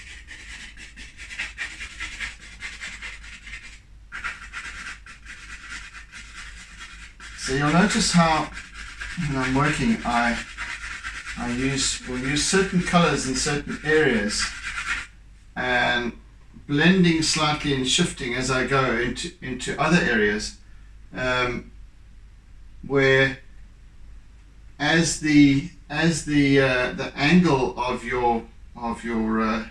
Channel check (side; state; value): both; identical; correlation 1.00